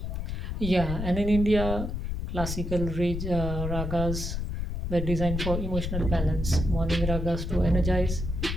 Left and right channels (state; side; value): noise; left; rumble, 3 dB below the sound